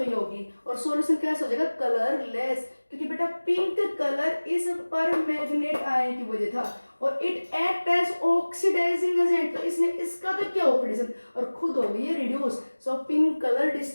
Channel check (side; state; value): both; inverted; correlation -1.00